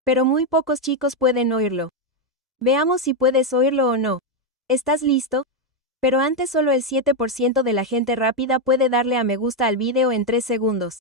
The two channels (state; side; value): normal; both; correlation 0.04